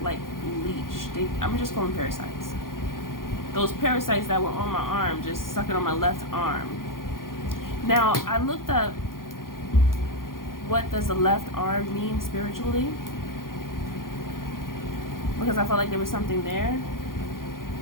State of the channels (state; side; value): late; right; 0.91 ms